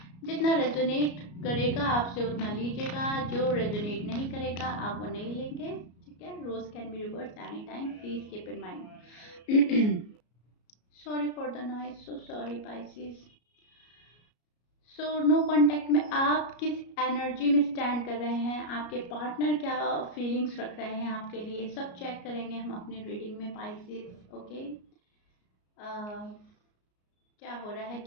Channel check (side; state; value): right; late; 33 ms